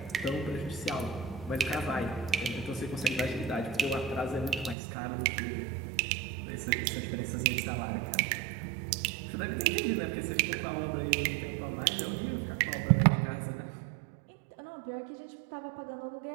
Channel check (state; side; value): drops out; left; at 4.8 s